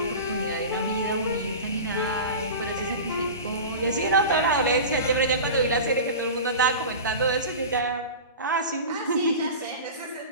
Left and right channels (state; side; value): inverted; both; correlation -0.31